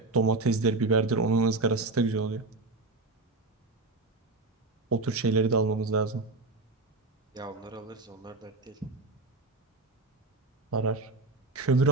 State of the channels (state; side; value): quieter; left; 3.4 dB